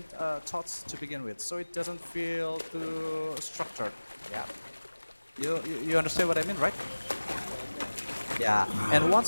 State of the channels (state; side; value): inverted; both; correlation -1.00